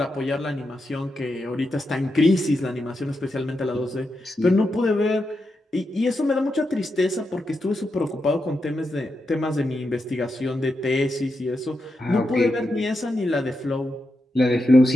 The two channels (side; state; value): both; normal; correlation 0.86